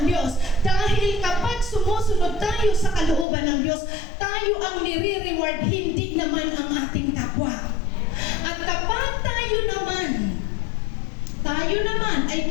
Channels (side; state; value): right; drops out; at 3.2 s